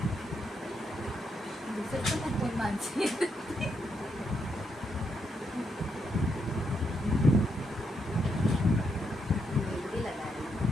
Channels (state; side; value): normal; both; correlation 0.79